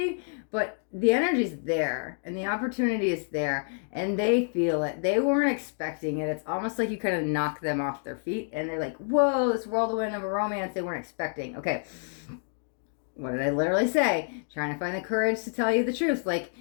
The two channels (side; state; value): right; silent; 58 dB below the other